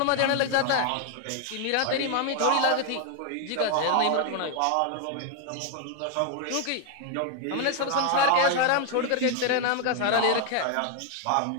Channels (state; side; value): different; both; correlation 0.00